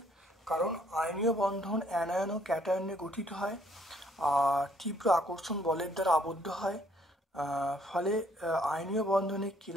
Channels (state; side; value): normal; both; correlation 0.64